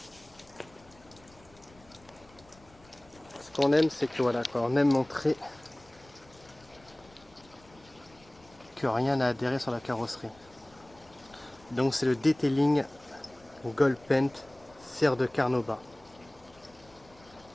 Ce qu'on aime, c'est que voilà, quoi, on aime montrer que rien n'a adhéré sur la carrosserie. Donc c'est le detailing Gold Paint cire de Carnauba.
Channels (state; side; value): noise; left; rumble, 27 dB below the sound